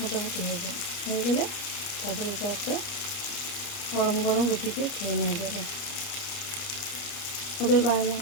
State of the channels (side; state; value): right; late; 29 ms